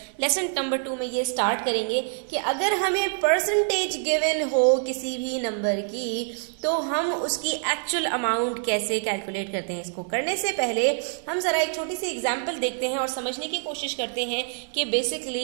लेसन नंबर 2 में ये स्टार्ट करेंगे कि अगर हमें परसेंटेज गिवन हो किसी भी नंबर की तो हम उसकी एक्चुअल अमाउंट कैसे कैलकुलेट करते हैं। इसको करने से पहले हम जरा एक छोटी सी एग्जाम्पल देखते हैं और समझने की कोशिश करते हैं कि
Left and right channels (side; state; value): left; silent; 60 dB below the other